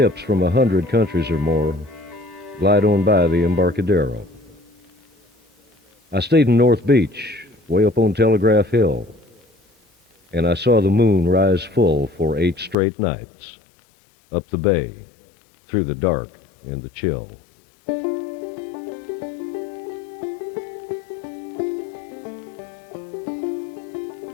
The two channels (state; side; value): drops out; right; at 12.8 s